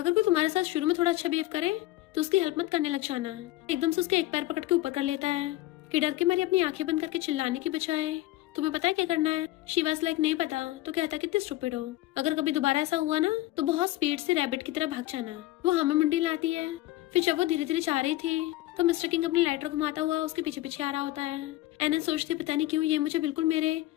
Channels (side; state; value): right; quieter; 16.8 dB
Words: कोई तुम्हारे साथ शुरू में थोड़ा अच्छा बिहेव करे तो उसकी हेल्प मत करने लग जाना। एकदम से उसके एक पैर पकड़ के ऊपर कर लेता है कि डर के मारे अपनी आंखें बंद करके चिल्लाने की बजाय तुम्हें पता है क्या करना है। शी वाज लाइक नहीं पता। तो कहता कितने स्टूपिड हो, अगर कभी दोबारा ऐसा हुआ ना तो बहुत स्पीड से रैबिट की तरह भाग जाना। वो हमें मुंडी लाती है। फिर जब वो धीरे धीरे जा रही थी तो मिस्टर किंग अपनी लाइटर घुमाता हुआ उसके पीछे पीछे आ रहा होता है। एनन सोचती पता नहीं क्यों ये मुझे बिल्कुल मेरे